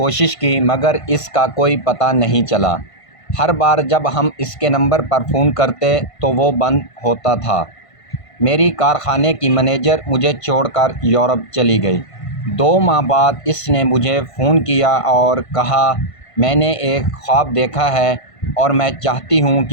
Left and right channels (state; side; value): late; right; 1.5 ms